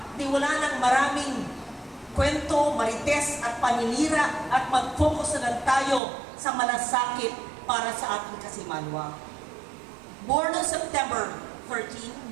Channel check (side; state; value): left; drops out; at 6.0 s